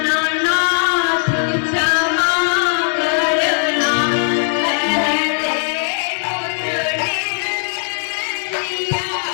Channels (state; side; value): silent; right; digital silence